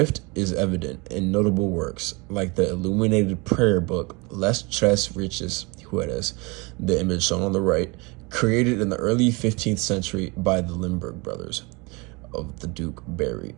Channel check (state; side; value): quieter; left; 27.5 dB